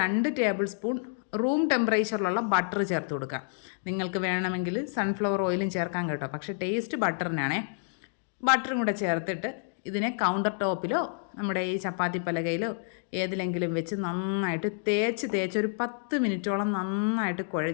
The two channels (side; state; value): right; silent; digital silence